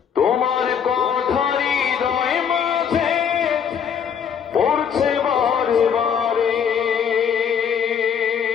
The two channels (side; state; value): right; quieter; 7.6 dB